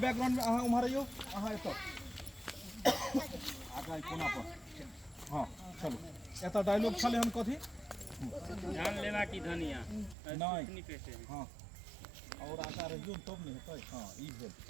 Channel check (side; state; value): left; drops out; at 10.2 s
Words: में अहाँ उम्हर आइयो, अहाँ एतऽ आगा कोना पर। हां चलो एतऽ डायलॉग छले हम कथी जान लेना की धनिया नहीं पे से। हां और आगा रहियो तब नहीं हेतै। हां ई भेल